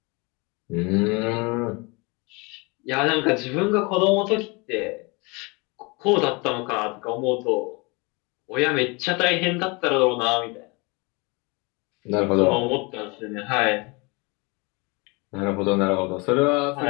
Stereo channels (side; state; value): right; quieter; 28.1 dB